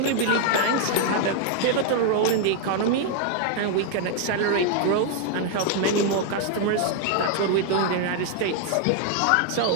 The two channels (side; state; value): both; different; correlation 0.00